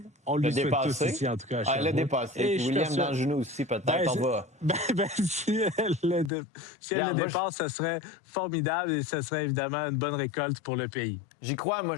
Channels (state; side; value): drops out; right; at 6.3 s